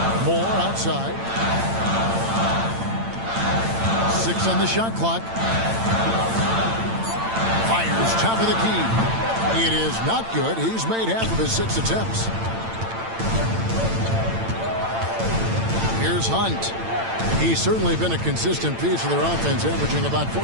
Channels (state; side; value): late; left; 8.9 ms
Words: Moore outside. 6 on the shot clock. Fires top of the key. It is not good. He's made half of his 6 attempts. Here's Hunt. He's certainly been a consistent piece of their offense, averaging about